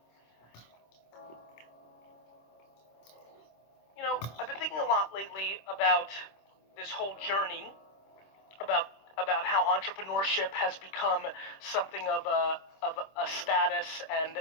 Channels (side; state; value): right; late; 26 ms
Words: I've been thinking a lot lately about this whole journey, about how entrepreneurship has become something of a status and